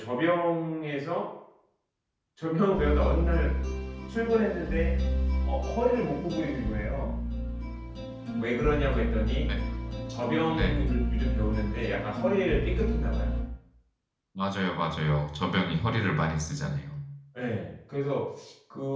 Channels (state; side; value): identical; both; correlation 1.00